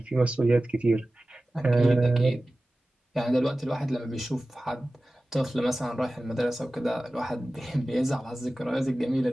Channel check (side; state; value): both; normal; correlation 0.96